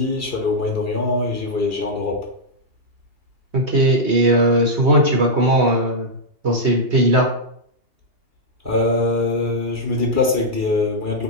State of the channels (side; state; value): left; late; 2.3 ms